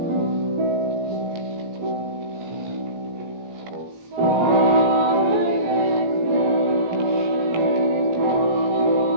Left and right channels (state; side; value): late; left; 17 ms